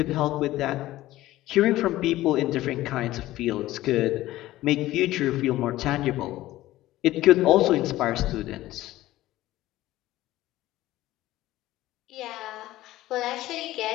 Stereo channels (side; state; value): right; quieter; 16.0 dB